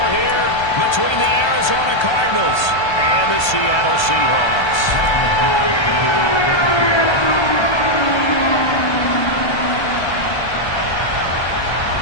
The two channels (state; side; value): late; right; 1.3 ms